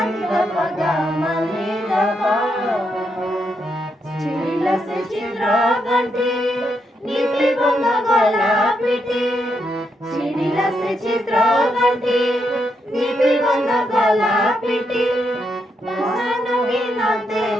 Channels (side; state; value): both; normal; correlation 0.80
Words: ni da pa ga ma ni da pa चिड़िला से चित्रा घंटी नीपी गंगा गला पिटी चिड़िला से चित्रा घंटी नीपी गंगा गला पिटी बसन पिनते